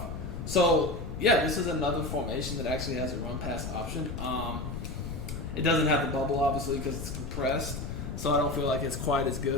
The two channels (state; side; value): noise; left; rumble, 6 dB below the sound